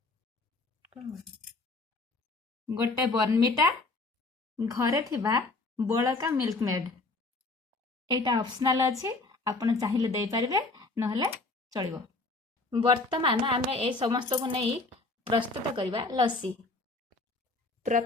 गोटे बर्नमिटा, घरे थिबा बळका मिल्क मेड। एटा ऑप्शनल अछि, आपण चाहिले देई परिबे नहले चलिबो। वर्तमान आमे ए समस्त को नहीं प्रस्तुत करबा लस्सी।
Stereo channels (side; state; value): right; quieter; 3.4 dB